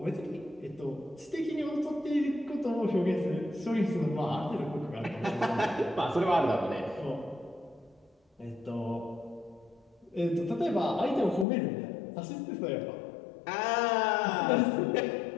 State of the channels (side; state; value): right; drops out; at 11.5 s